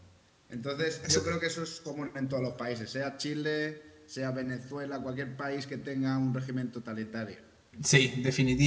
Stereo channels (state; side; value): identical; both; correlation 1.00